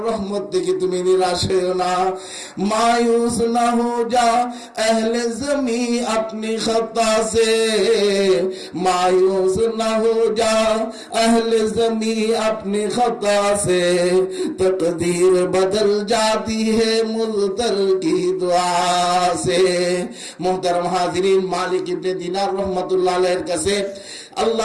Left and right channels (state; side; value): identical; both; correlation 1.00